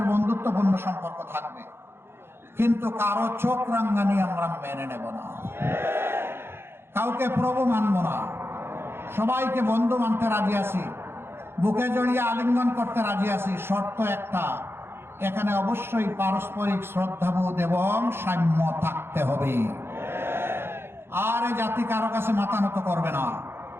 বন্ধুত্বপূর্ণ সম্পর্ক থাকবে, কিন্তু কারো চোখ রাঙ্গানি আমরা মেনে নেব না, কাউকে প্রভু মানব না, সবাইকে বন্ধু মানতে রাজি আছি, বুকে জড়িয়ে আলিঙ্গন করতে রাজি আছি। শর্ত একটা, এখানে অবশ্যই পারস্পরিক শ্রদ্ধাবোধ এবং সাম্য থাকতে হবে। আর এই জাতি কারো কাছে মাথা নত করবে না।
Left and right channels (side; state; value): left; late; 0.11 ms